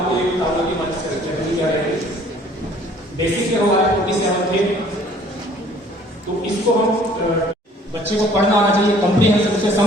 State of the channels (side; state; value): both; normal; correlation 0.56